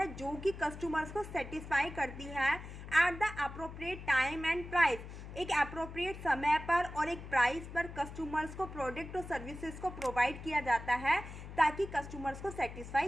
जो कि कस्टमर्स को सेटिस्फाई करती है at the appropriate time and price, एक अप्रोप्रिएट समय पर और एक प्राइस पर कस्टमर्स को प्रोडक्ट और सर्विसेज को प्रोवाइड किया जाता है ताकि कस्टमर्स को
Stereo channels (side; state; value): left; noise; hum, 11 dB below the sound